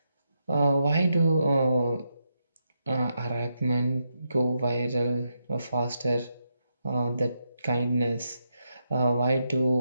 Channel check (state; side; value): inverted; both; correlation -0.83